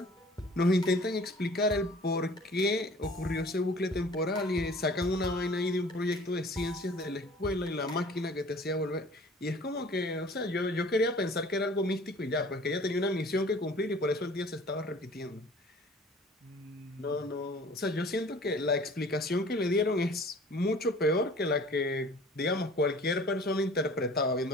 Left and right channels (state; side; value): normal; both; correlation 0.48